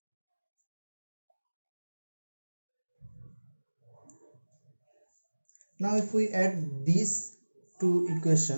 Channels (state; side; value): inverted; both; correlation -1.00